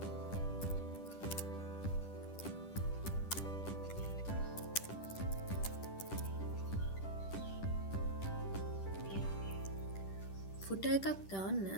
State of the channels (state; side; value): late; right; 10 ms